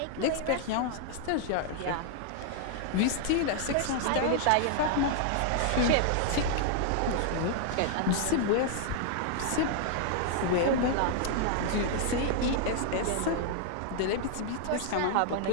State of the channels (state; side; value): different; both; correlation 0.00